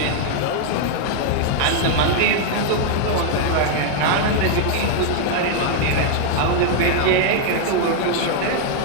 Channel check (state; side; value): different; both; correlation 0.00